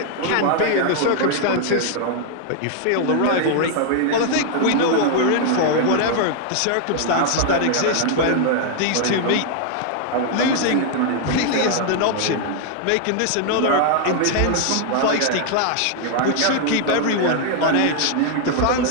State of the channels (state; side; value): different; both; correlation 0.00